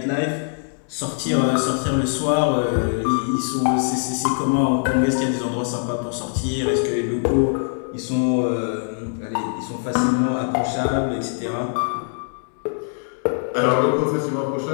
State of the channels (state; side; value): silent; right; digital silence